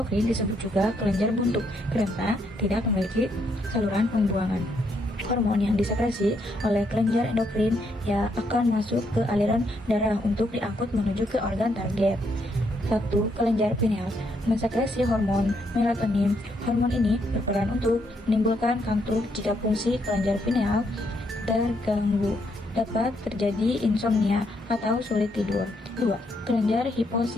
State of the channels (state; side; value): normal; both; correlation 0.75